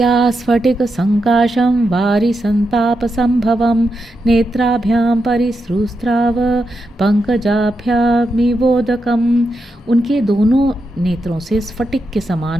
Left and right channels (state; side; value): normal; both; correlation 0.86